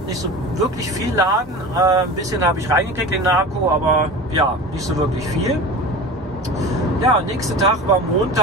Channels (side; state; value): both; normal; correlation 0.33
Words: nicht so wirklich viel laden. Ein bisschen habe ich reingekriegt in den Akku, aber ja, nicht so wirklich viel. Ja, nächster Tag war